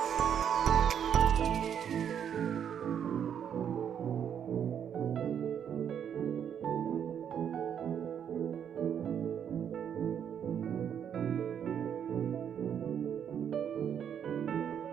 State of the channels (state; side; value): quieter; left; 8.6 dB